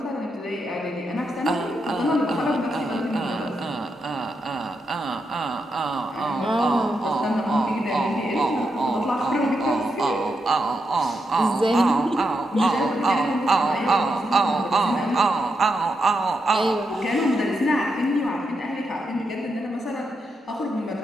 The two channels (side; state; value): both; normal; correlation 0.83